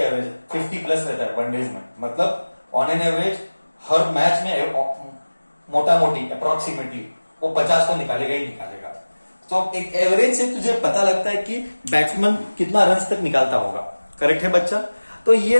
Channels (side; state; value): both; inverted; correlation -1.00